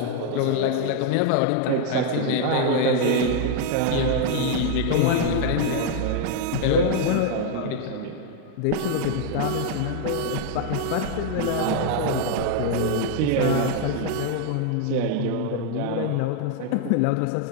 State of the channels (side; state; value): both; different; correlation 0.00